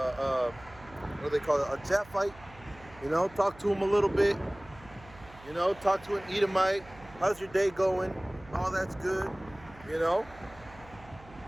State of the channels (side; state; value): right; noise; hum, 21 dB below the sound